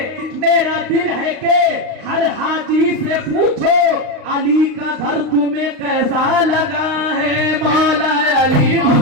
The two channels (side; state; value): left; late; 39 ms